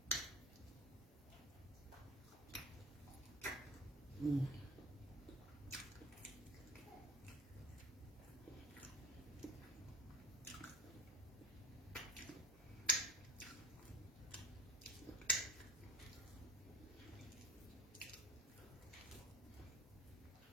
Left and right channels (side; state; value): both; normal; correlation 0.34